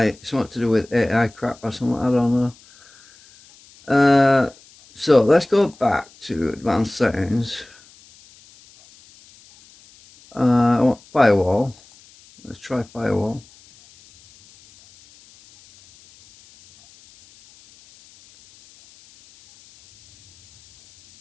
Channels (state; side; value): noise; left; hiss, 27 dB below the sound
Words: something to do with AI crap or something, I don't know. So let's go back to advanced settings. I want firewall. Let's try firewall.